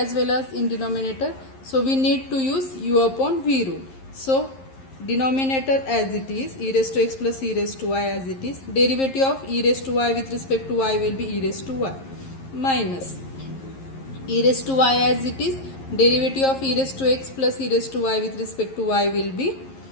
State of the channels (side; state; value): right; late; 11 ms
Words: well as in denominator, so we need to use u upon v rule. So denominator as it is, e raised to x plus e raised to y as it is, derivative of e raised to y with respect to y will be e raised to y minus e raised to y as it is, derivative of e raised to x plus e raised to y with respect to y will be